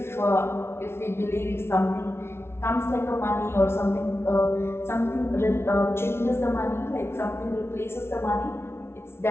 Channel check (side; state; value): right; late; 0.12 ms